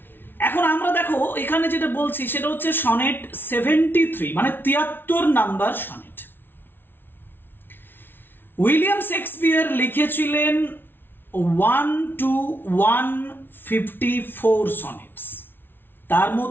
এখন আমরা দেখো এখানে যেটা বলছি সেটা হচ্ছে সনেট 73, মানে 73 নাম্বার সনেট। উইলিয়াম শেক্সপিয়ার লিখেছিলেন 1 to 154 সনেটস। তার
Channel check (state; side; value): late; right; 0.10 ms